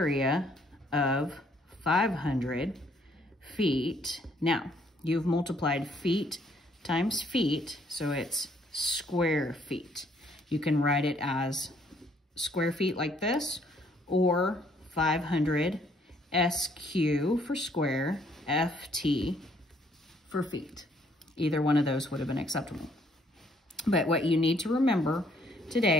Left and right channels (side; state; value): both; normal; correlation 0.66